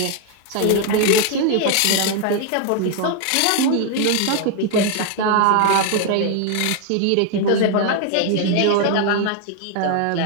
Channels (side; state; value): both; different; correlation 0.01